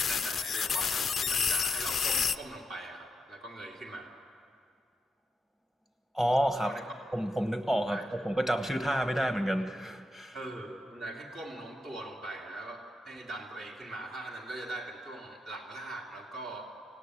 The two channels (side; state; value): both; normal; correlation 0.86